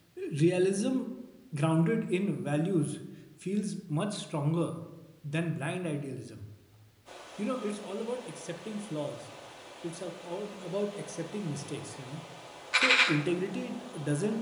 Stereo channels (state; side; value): identical; both; correlation 1.00